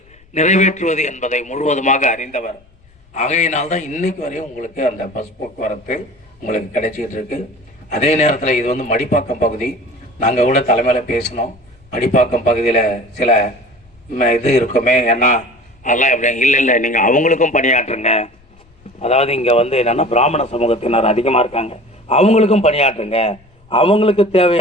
நிறைவேற்றுவது என்பதை முழுவதுமாக அறிந்தவர். ஆகையினால்தான் இன்னைக்கு வரையும் உங்களுக்கு அந்த பஸ் போக்குவரத்து உங்களுக்கு கிடைச்சிக்கிட்டு இருக்கு. அதே நேரத்தில் இது மடிப்பாக்கம் பகுதி. நாங்கள் கூட தலைமையில் பேசினோம். மடிப்பாக்கம் பகுதியில் சில இது இருக்குமே, ஏன்னா அதெல்லாம் எப்படி இல்லை நீங்கள் அவங்களுக்கும் பணியாற்றுங்க. அதாவது இங்கே என்னென்னா பிராமண சமூகத்தினர் அதிகமாக இருக்காங்க, அவங்களுக்கும் பணியாற்றுங்க, அவங்களுக்கு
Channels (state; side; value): noise; left; rumble, 30 dB below the sound